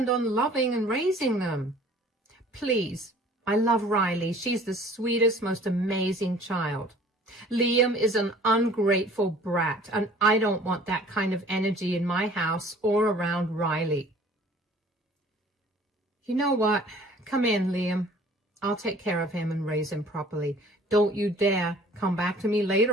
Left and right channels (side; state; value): both; normal; correlation 0.51